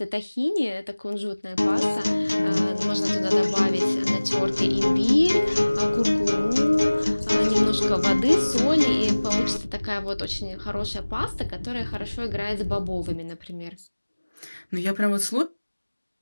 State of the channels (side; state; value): both; inverted; correlation -1.00